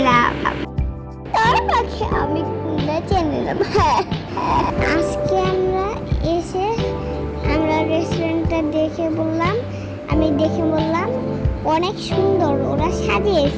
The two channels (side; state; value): both; identical; correlation 1.00